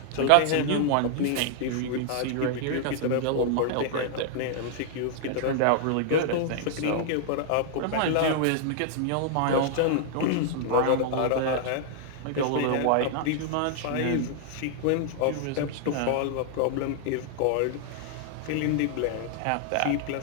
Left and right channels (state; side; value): different; both; correlation -0.01